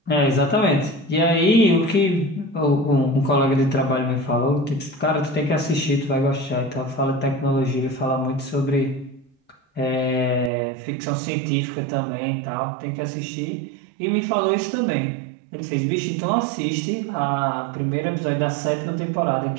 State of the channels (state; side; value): drops out; left; at 10.5 s